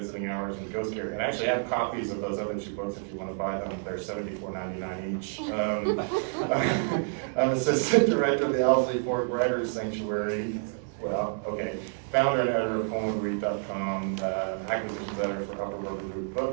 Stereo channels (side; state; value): left; silent; 59 dB below the other